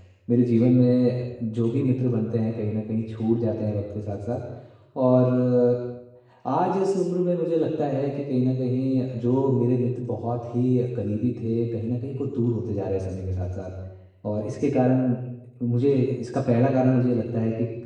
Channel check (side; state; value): both; identical; correlation 1.00